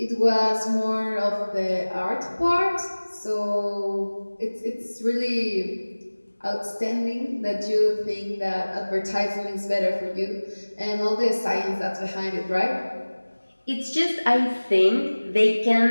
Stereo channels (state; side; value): inverted; both; correlation -1.00